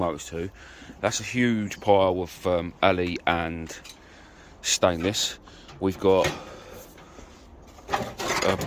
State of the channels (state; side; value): identical; both; correlation 1.00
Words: too. That's a huge pile of alley and stainless. We've got